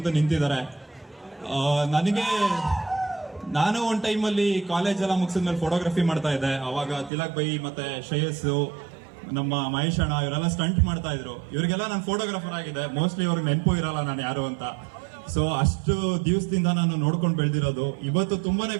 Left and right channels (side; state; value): left; drops out; at 7.1 s